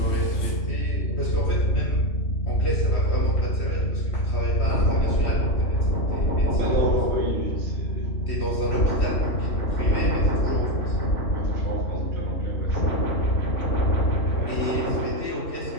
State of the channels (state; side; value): late; right; 3.1 ms